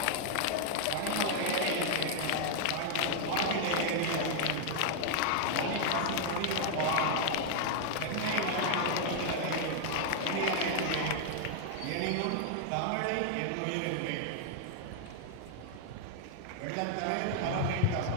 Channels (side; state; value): both; different; correlation -0.01